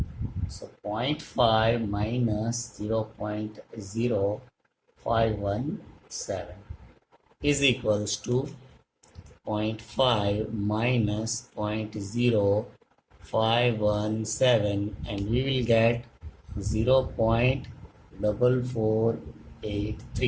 So 0.5 minus 0.0517 is equals to 0.5 minus 0.0517 and we will get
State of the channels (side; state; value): both; identical; correlation 1.00